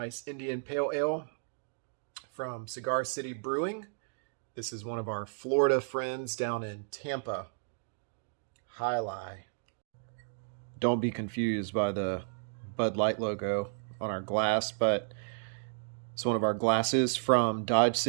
Indian Pale Ale from Cigar City Brewing. This is one of our Florida friends down in Tampa. Hi-Lai. Don't be confused by the Bud Light logo on our glass, but it's one of our glasses from Dodge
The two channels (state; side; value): silent; left; digital silence